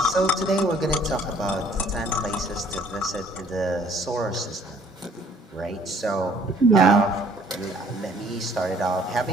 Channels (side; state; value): both; normal; correlation 0.58